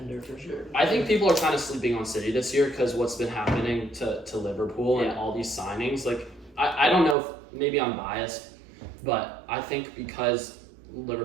for sure. I think people are kind of sleeping on City this year because what's been happening to Liverpool and all these signings. Like I don't know if maybe I'm biased, but I think because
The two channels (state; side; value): drops out; left; at 7.2 s